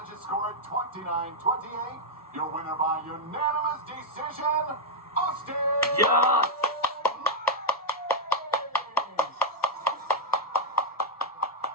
scored 29-28. Your winner by unanimous decision, Austin. Yes.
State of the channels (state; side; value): normal; both; correlation -0.02